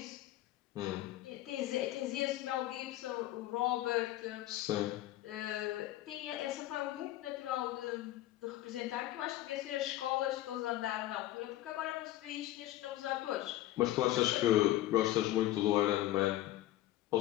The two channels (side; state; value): right; quieter; 14.9 dB